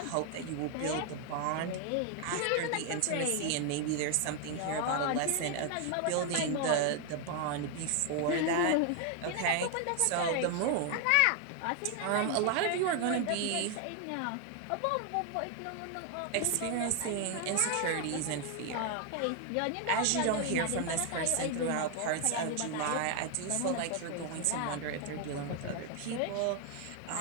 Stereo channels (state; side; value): different; both; correlation 0.00